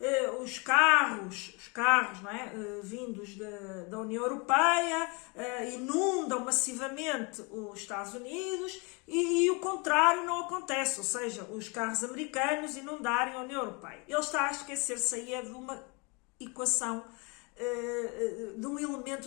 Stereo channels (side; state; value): right; quieter; 30.5 dB